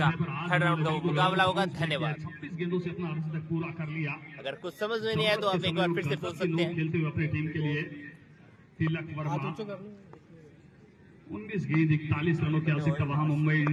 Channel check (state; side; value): identical; both; correlation 1.00